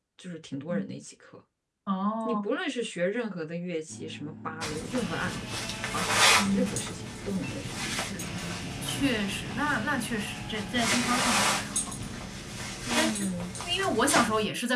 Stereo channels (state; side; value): identical; both; correlation 1.00